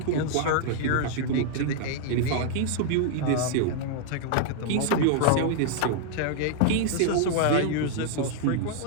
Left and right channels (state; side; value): different; both; correlation -0.01